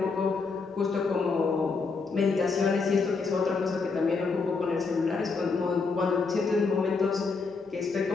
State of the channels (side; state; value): right; quieter; 4.5 dB